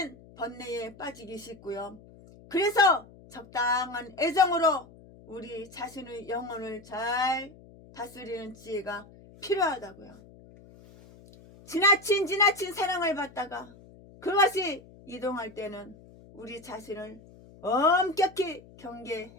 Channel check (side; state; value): left; noise; hum, 22 dB below the sound